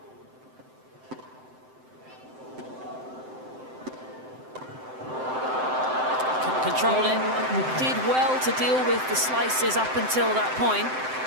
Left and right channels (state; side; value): late; left; 7.8 ms